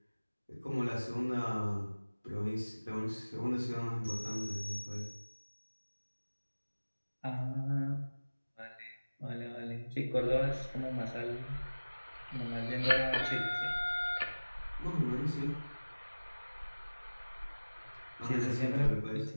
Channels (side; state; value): both; inverted; correlation -1.00